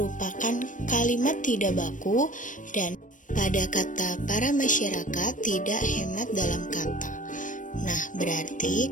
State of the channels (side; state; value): right; late; 0.37 ms